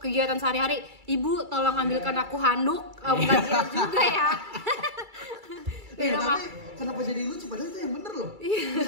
sehari-hari. Ibu tolong ambilkan aku handuk, bukan gitu juga ya. Tapi kenapa jadi lucu? Padahal itu yang bener loh.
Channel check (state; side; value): late; left; 2.3 ms